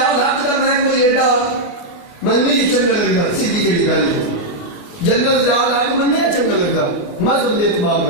الحق کا میں کوئی ایڈا منی چنگا لگتا سیدھی جڑی گل ہے. جنرل ضیاء الحق منی چنگا لگتا مذہب کے اعتبار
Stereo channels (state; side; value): late; right; 28 ms